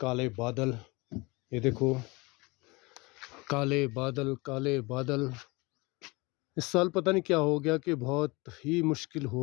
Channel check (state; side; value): quieter; right; 25.2 dB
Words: बादल, ये देखो, काले बादल काले बादल। इस साल पता नहीं क्या हो गया कि बहुत ही मुश्किल